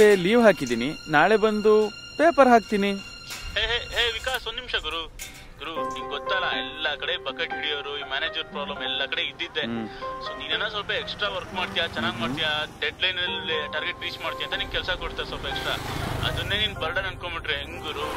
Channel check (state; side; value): identical; both; correlation 1.00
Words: ಡೇ ಲೀವ್ ಹಾಕಿದ್ದೀನಿ. ನಾಳೆ ಬಂದು ಪೇಪರ್ ಹಾಕ್ತೀನಿ. ಹೇ ವಿಕಾಸ್, ಒಂದ್ ನಿಮಿಷ ಗುರು. ನಿಂಗೆ ಗೊತ್ತಲ್ಲ, ಎಲ್ಲ ಕಡೆ ಬಕೆಟ್ ಹಿಡಿಯೋರು, ಈ ಮ್ಯಾನೇಜರ್ ಪ್ರಾಬ್ಲಮ್ ಎಲ್ಲ ಕಡೆ ಇದ್ದಿದ್ದೆ. ಸೊ ನೀನೇನೋ ಸ್ವಲ್ಪ ಎಕ್ಸ್ಟ್ರಾ ವರ್ಕ್ ಮಾಡ್ತೀಯಾ, ಚೆನ್ನಾಗಿ ಮಾಡ್ತೀಯಾ, ಡೆಡ್ ಲೈನ್ ಅಲ್ಲಿ ಟಾರ್ಗೆಟ್ ರೀಚ್ ಮಾಡ್ತೀಯ ಅಂತ ನಿಂಗೆ ಕೆಲಸ ಕೊಡ್ತಾರೆ ಸ್ವಲ್ಪ ಎಕ್ಸ್ಟ್ರಾ. ಅದನ್ನೇ ನೀನ್ ಬರ್ಡನ್ ಅನ್ಕೊಂಡ್ಬಿಟ್ರೆ ಹೆಂಗ್ ಗುರು?